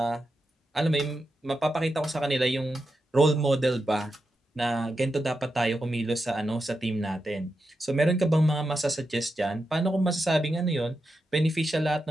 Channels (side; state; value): both; normal; correlation 0.88